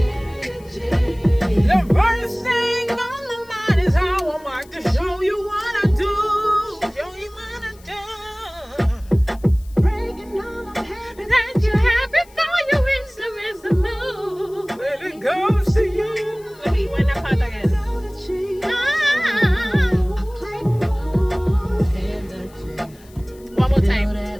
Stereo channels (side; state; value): left; noise; hiss, 27 dB below the sound